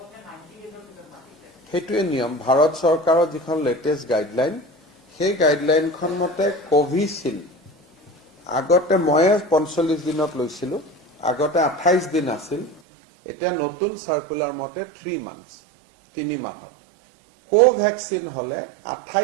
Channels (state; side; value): drops out; left; at 12.8 s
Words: সেইটোৱে নিয়ম। ভাৰত চৰকাৰৰ যিখন লেটেষ্ট গাইডলাইন, সেই গাইডলাইনখন মতে কোভিচিল্ড আগতে ময়ে 45 দিনত লৈছিলোঁ, আগতে 28 দিন আছিল, এতিয়া নতুন চাৰ্কুলাৰ মতে 3 মান্থছ, 3 মাহত। কোভেক্সিন হলে